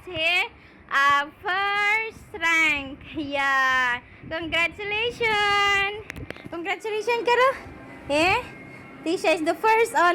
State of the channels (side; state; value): both; identical; correlation 1.00